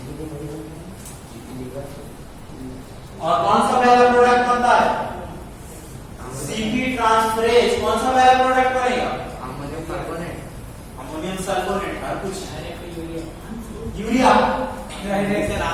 और कौन सा पहला प्रोडक्ट बनता है, CP ट्रांसफरेज। कौन सा पहला प्रोडक्ट बनेगा, अमोनियम कार्बोनेट, अमोनियम सल्फोनेट। और कुछ यूरिया, सर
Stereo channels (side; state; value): both; identical; correlation 1.00